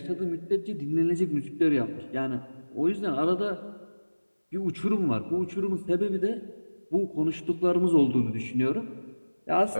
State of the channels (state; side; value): inverted; both; correlation -1.00